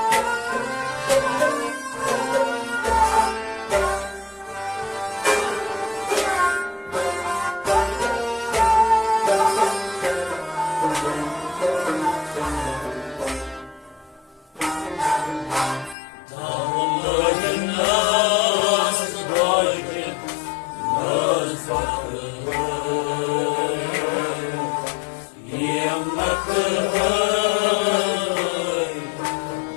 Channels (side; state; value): right; drops out; at 16.0 s